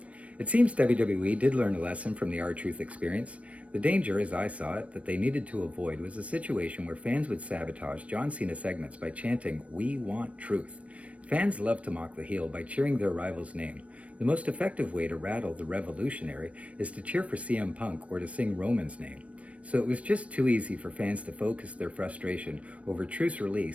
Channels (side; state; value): left; late; 0.064 ms